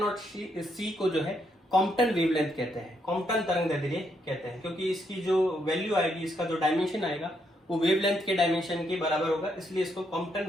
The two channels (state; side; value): normal; both; correlation 0.76